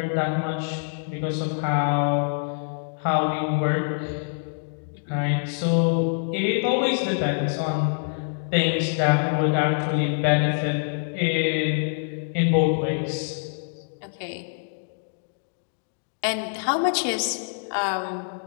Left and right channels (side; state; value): right; silent; digital silence